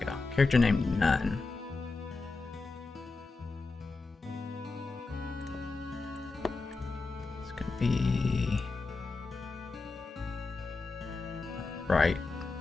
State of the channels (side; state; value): right; quieter; 3.8 dB